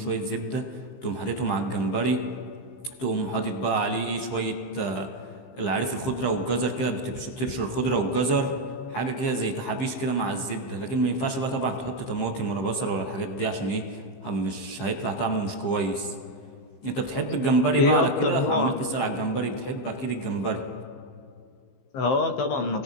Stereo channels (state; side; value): late; right; 15 ms